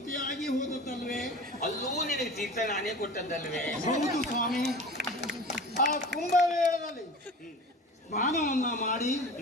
ಹೋದದ್ದಲ್ವೇ? ಅಲ್ಲೂ ನಿನಗೆ ತೀರ್ಥ ನಾನೇ ಕೊಟ್ಟದ್ದಲ್ವೇ? ಹೌದು ಸ್ವಾಮಿ. ಆ ಕುಂಭಮೇಳದಲ್ಲಿ ಸ್ನಾನವನ್ನ ಮಾಡಿ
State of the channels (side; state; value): both; normal; correlation 0.36